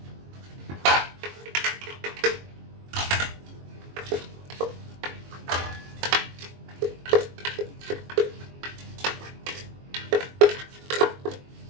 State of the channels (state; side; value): late; left; 22 ms